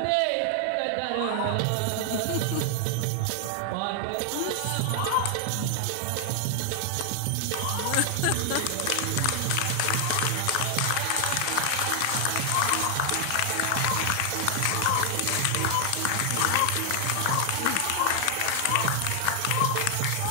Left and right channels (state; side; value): different; both; correlation 0.00